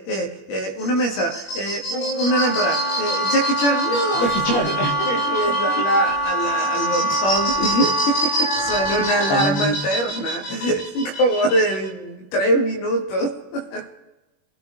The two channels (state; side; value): late; right; 21 ms